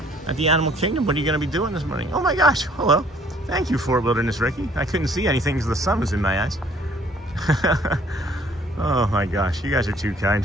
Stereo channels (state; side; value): normal; both; correlation 0.59